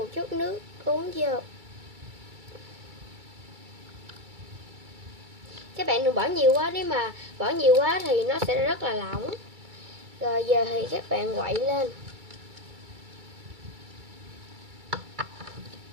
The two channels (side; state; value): left; late; 2.3 ms